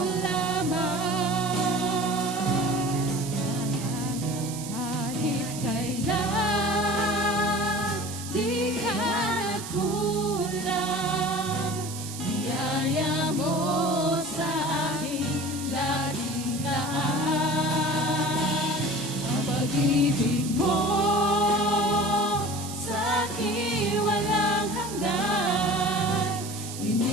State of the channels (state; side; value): noise; right; hiss, 10 dB below the sound